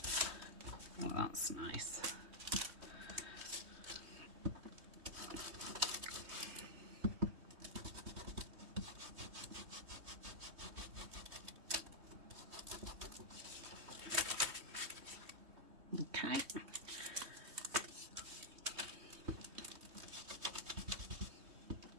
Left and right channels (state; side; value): late; left; 3.2 ms